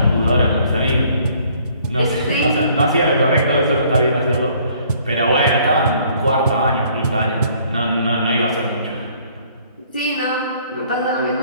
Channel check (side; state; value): both; inverted; correlation -0.60